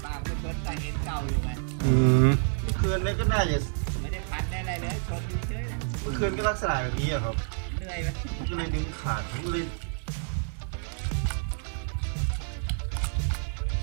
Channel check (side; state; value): left; silent; 59 dB below the other